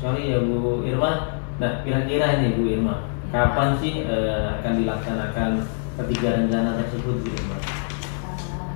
ya Bu Irma. Nah, kira-kira ini Bu Irma, kapan sih akan dilaksanakan ketiga rencana tersebut Bu Irma?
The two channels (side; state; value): right; silent; digital silence